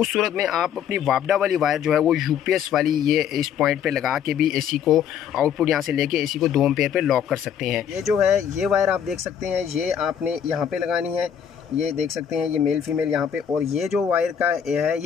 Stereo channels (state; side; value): quieter; right; 8.5 dB